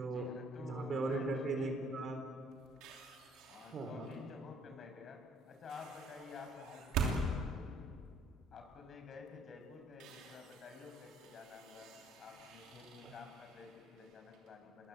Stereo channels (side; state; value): both; normal; correlation 0.60